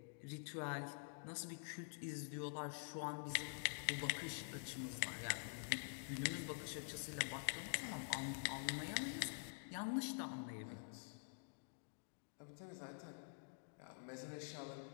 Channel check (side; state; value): right; silent; digital silence